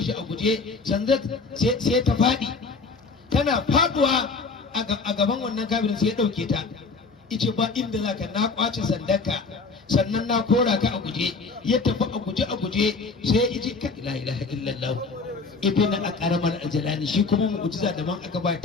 shi a guje sanda sai ta faɗi tana faduwa a gaban wannan kafirin sai ya ɗauke ta ice ba inda zaka na kwace sandarka sannan na kora ka a guje ya tafi a guje sai iji ka la ilaha illallah ibn aqramal ajalani shi kuma mu'jiza da man aka ba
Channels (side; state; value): right; quieter; 4.3 dB